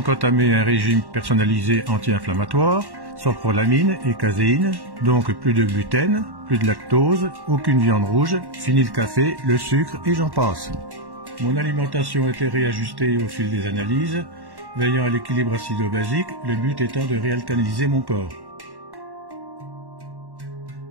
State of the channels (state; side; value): late; left; 1.1 ms